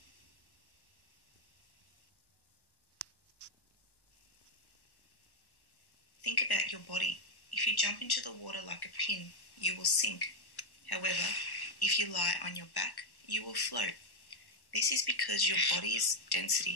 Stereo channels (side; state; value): right; late; 1.1 ms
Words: Think about your body. If you jump into the water like a pin, you will sink. However, if you lie on your back, you will float. This is because your body's